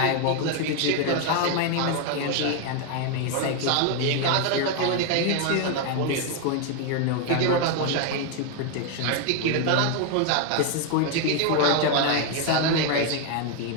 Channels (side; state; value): both; different; correlation 0.01